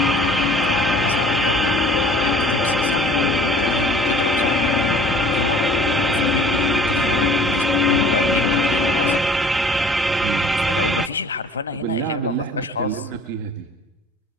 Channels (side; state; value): both; normal; correlation 0.50